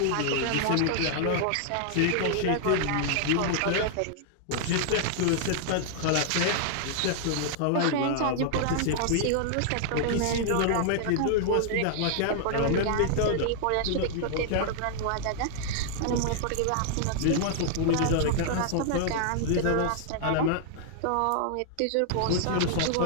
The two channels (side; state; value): both; different; correlation -0.01